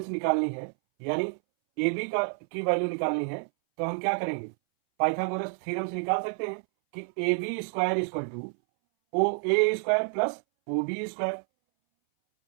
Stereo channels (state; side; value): silent; left; 59 dB below the other